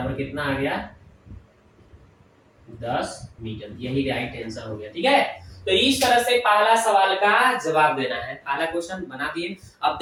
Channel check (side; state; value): both; identical; correlation 1.00